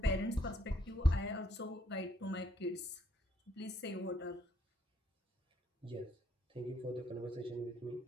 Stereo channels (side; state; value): both; normal; correlation 0.70